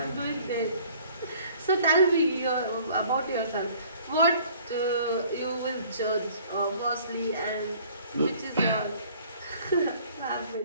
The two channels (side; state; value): both; inverted; correlation -0.54